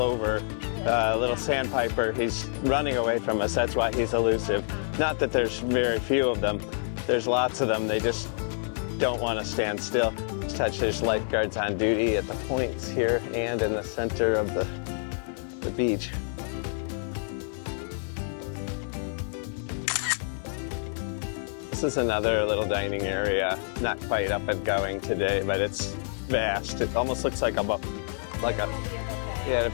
little sandpiper. He's running away from us. That's why he's elusive. Not that there's very few of them. There's lots of them. They just don't want to stand still. There's lifeguards on duty at the points here and in the center of the beach. This is another little dining area. Not quite up and going today, but it's vast. It almost looks like a buffet. It will be a buffet, yeah, I'm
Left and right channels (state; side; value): silent; right; 59 dB below the other